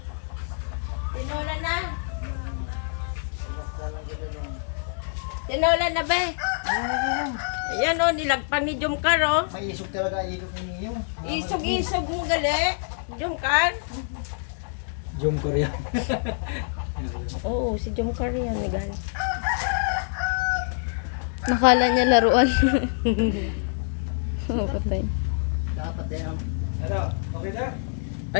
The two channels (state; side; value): silent; right; digital silence